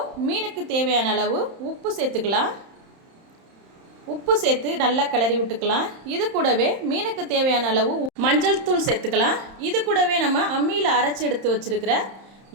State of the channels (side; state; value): left; late; 31 ms